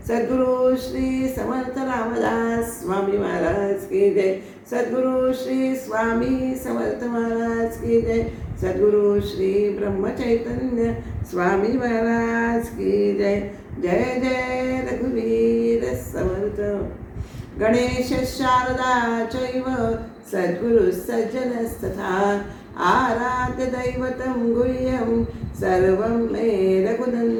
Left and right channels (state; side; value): identical; both; correlation 1.00